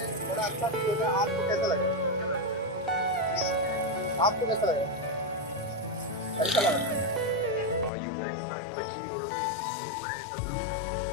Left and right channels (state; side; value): drops out; right; at 7.9 s